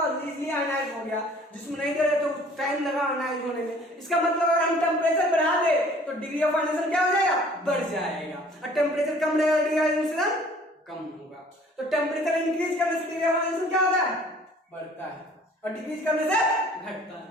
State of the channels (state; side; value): normal; both; correlation 0.53